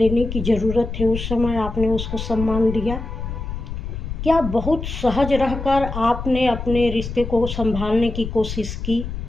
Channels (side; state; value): left; noise; rumble, 6 dB below the sound